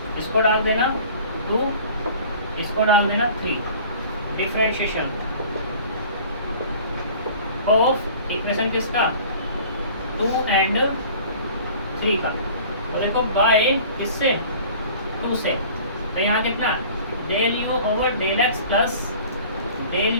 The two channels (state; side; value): inverted; both; correlation -0.46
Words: इसको डाल देना 2, इसको डाल देना 3, डिफरेंशिएशन ऑफ इक्वेशन किसका 2 एंड 3 का। तो देखो बाय किससे 2 से, तो यहाँ कितना del u over del x plus